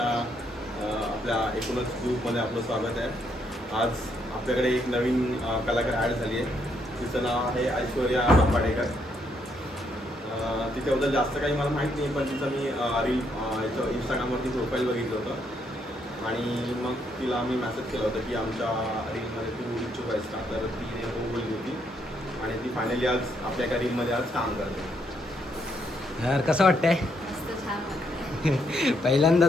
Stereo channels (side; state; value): both; normal; correlation 0.74